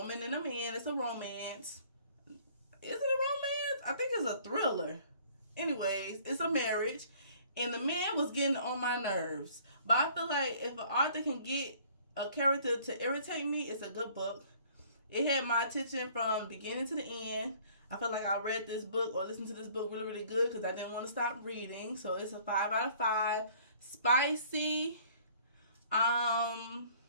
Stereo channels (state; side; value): inverted; both; correlation -0.55